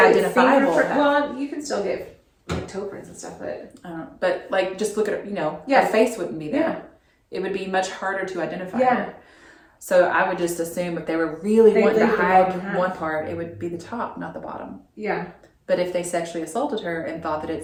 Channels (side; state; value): both; identical; correlation 1.00